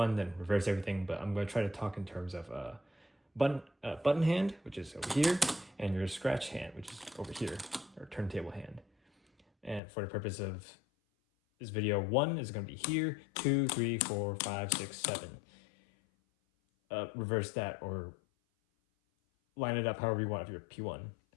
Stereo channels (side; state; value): right; drops out; at 9.8 s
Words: then reverse everything, but I'm gonna try to talk in terms of button hand, which is over here, and your scratch hand, which is over here, or turntable hand. And for the purpose of this video, 1 is going to be here, 2, 3, 4, 5, 6, 7. Reverse that or line it up however you want if you're P1.